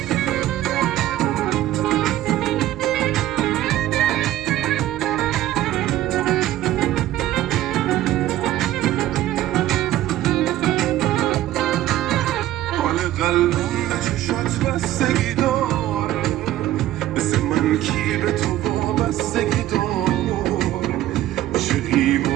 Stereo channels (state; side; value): quieter; left; 14.1 dB